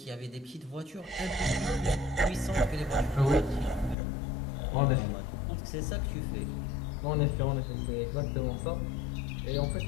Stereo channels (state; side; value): drops out; right; at 4.0 s